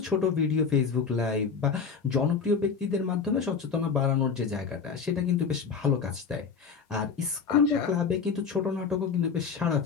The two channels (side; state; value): right; quieter; 5.8 dB